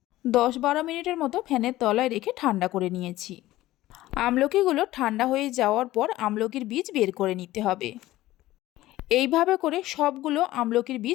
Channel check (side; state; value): right; quieter; 16.1 dB